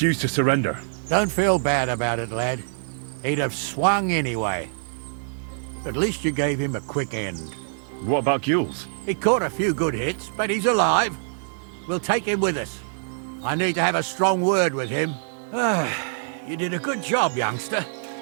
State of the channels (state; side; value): silent; left; digital silence